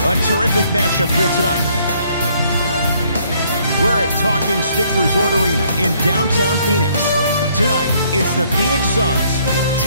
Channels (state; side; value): inverted; both; correlation -0.65